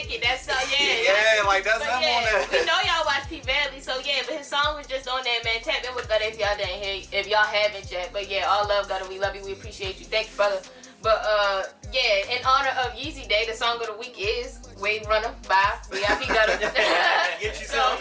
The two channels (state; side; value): identical; both; correlation 1.00